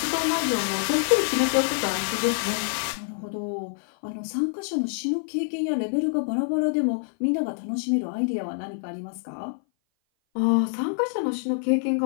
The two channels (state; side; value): silent; right; 57 dB below the other